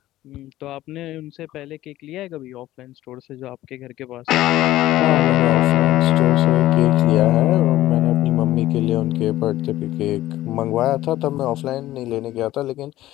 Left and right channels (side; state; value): right; quieter; 15.1 dB